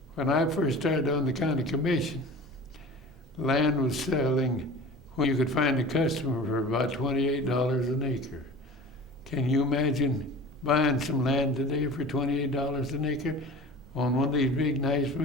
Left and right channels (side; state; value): both; normal; correlation 0.39